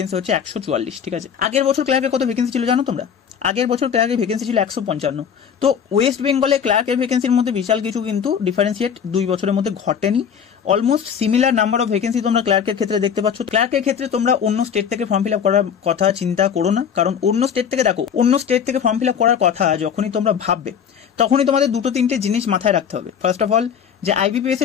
হচ্ছে 144, ঠিক আছে। আগের বছর ক্লার্কের কত ভ্যাকেন্সি ছিল জানো তোমরা? আগের বছর ক্লার্কের ভ্যাকেন্সি ছিল 155। তো ওয়েস্ট বেঙ্গলে ক্লার্কের ভ্যাকেন্সির মধ্যে বিশাল কিছু কিন্তু ডিফারেন্সিয়েট 2 বছরের মধ্যে ঘটেনি। Almost similar number of vacancy তোমরা ক্লার্কের ক্ষেত্রে দেখতে পাচ্ছ। ক্লার্কের ক্ষেত্রে তোমরা অন্য স্টেট থেকে ফর্ম ফিল আপ করার কথা চিন্তা করো না, কারণ অন্য স্টেট থেকে দেখো, অন্য স্টেট থেকে ফর্ম ফিল আপ করার কথা যখনই তোমরা ভাববে তখনই তোমাদের 2-3টে জিনিস মাথায় রাখতে হবে। ফার্স্ট অফ অল, যে আইবিপিএস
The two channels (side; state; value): right; quieter; 7.7 dB